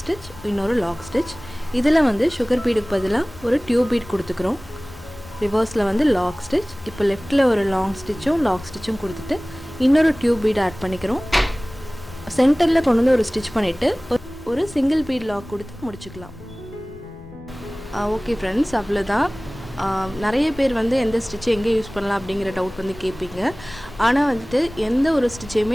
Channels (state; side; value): noise; left; rumble, 19 dB below the sound